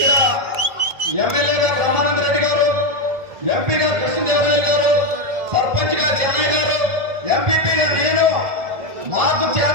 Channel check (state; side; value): late; left; 1.8 ms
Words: ఎమ్మెల్యేగా బ్రహ్మానంద రెడ్డి గారు, ఎంపీగా కృష్ణదేవరాయలు గారు, సర్పంచ్ గా చెన్నై గారు, ఎంపీపీగా నేను, మాకు